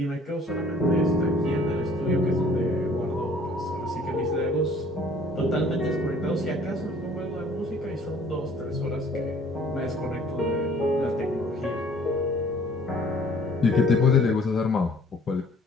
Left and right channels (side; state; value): both; normal; correlation 0.55